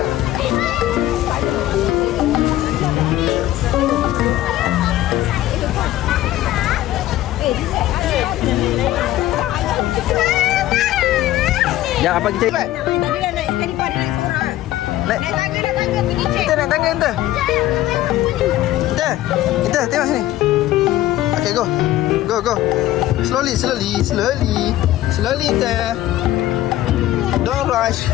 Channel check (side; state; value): right; quieter; 14.6 dB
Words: Ya, apa kita buat? Dia dah naik sekali pada naik seorang. Naik tangga pergi cek. Kita naik tangga kita. Kita tengok sini. Okay, go. Slowly kita. Don't rush,